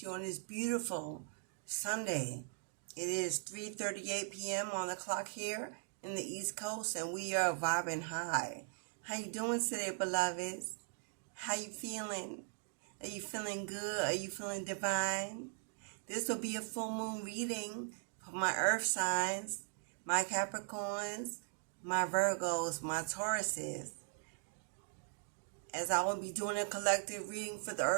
you on this beautiful Sunday. It is 3:38 p.m. on the clock here in the East Coast, and we are vibing high. How you doing today, beloveds? How you feeling? Are you feeling good? Are you feeling divine? This will be a full moon reading for my earth signs, my Capricorns, my Virgos, my Tauruses. As I will be doing a collective reading for the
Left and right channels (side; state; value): left; silent; digital silence